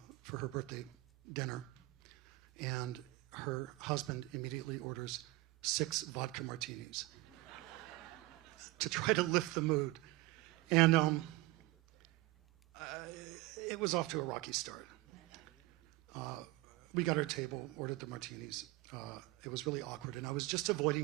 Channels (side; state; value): left; quieter; 20.1 dB